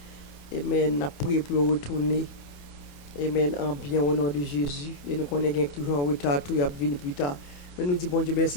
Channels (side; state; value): right; late; 28 ms